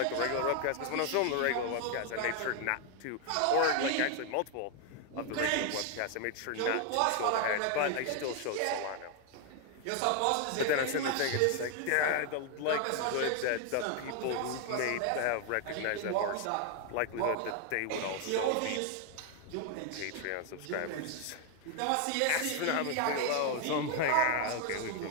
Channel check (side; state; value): both; different; correlation 0.00